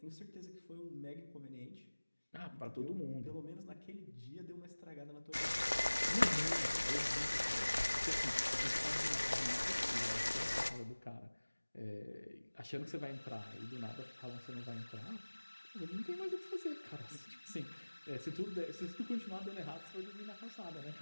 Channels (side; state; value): both; inverted; correlation -1.00